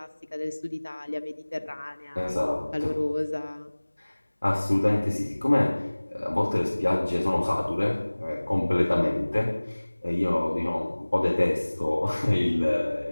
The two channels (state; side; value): inverted; both; correlation -1.00